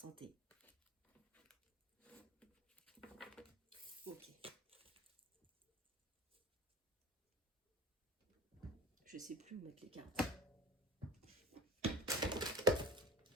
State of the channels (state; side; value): normal; both; correlation 0.36